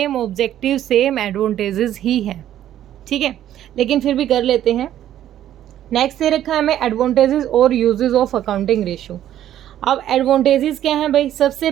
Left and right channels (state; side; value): quieter; left; 11.7 dB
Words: ऑब्जेक्टिव, सेम एडवांटेजेस ही हैं, ठीक है। लेकिन फिर भी कर लेते हैं। नेक्स्ट दे रखा है हमें एडवांटेजेस और यूजेस ऑफ अकाउंटिंग रेशियो। अब एडवांटेजेस क्या हैं भाई? सबसे